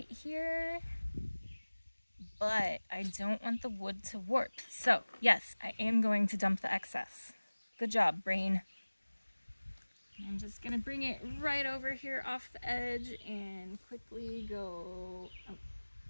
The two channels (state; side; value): inverted; both; correlation -1.00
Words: here, but I don't want the wood to warp. So, yes, I am going to dump the excess. Good job, brain. I'm just gonna bring it right over here off the edge and quickly go. Oh,